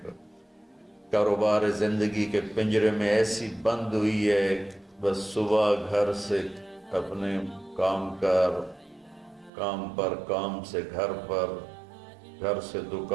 کاروبار زندگی کے پنجرے میں ایسی بند ہوئی ہے، بس صبح گھر سے اپنے کام پر، کام سے گھر پر، گھر سے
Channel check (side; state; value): left; drops out; at 9.5 s